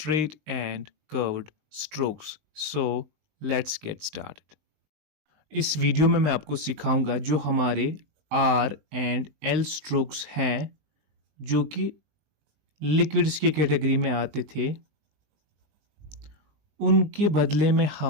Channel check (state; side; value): late; left; 20 ms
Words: and curved strokes. So let's get started. इस video में मैं आपको सिखाऊंगा जो हमारे R and L strokes हैं जो कि लिक्विड्स की कैटेगरी में आते थे, उनके बदले में